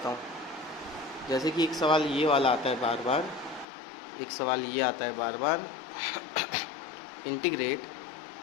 हूँ। जैसे कि एक सवाल ये वाला आता है बार बार, एक सवाल ये आता है बार बार, integrate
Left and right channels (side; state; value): right; drops out; at 3.7 s